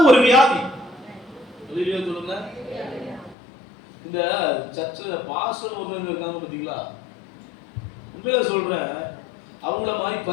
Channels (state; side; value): drops out; right; at 3.4 s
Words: ஒரு வியாதி. சொல்லுங்க. இந்த சர்ச்சில் பாஸ்டர் ஒருத்தவங்க இருக்காங்க பாத்தீங்களா, உண்மையில சொல்றேன், அவங்கள மாதிரி